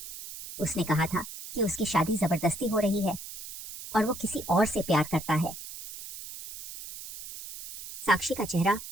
उसने कहा था कि उसकी शादी जबरदस्ती हो रही है और वो किसी और से प्यार करता है। साक्षी का चेहरा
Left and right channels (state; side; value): noise; right; hiss, 11 dB below the sound